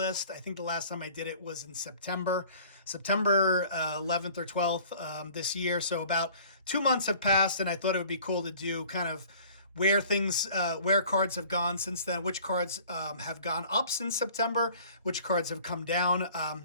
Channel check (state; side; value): inverted; both; correlation -0.50